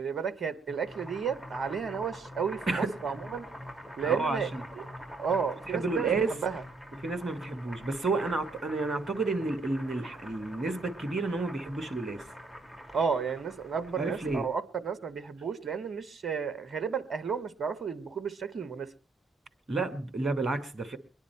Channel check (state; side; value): quieter; left; 4.0 dB